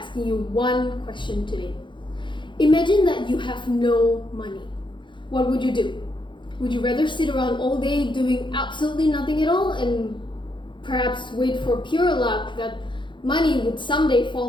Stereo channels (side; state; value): right; late; 0.23 ms